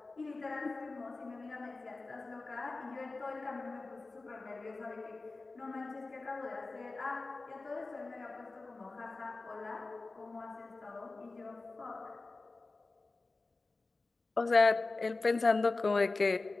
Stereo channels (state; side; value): quieter; right; 3.5 dB